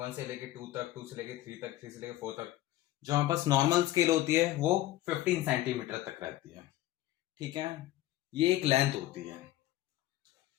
से लेके 2 तक, 2 से लेके 3 तक, 3 से लेके 4 तक। जो हमारे पास नॉर्मल स्केल होती है वो 15 सेंटीमीटर तक रहती है। ठीक है, ये एक लेंथ होती है,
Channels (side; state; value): right; quieter; 15.3 dB